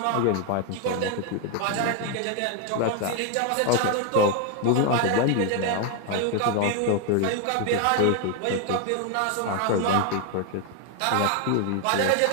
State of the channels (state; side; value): different; both; correlation 0.01